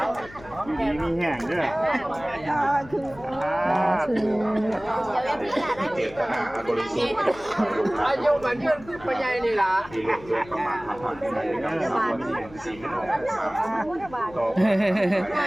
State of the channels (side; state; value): left; noise; hum, 19 dB below the sound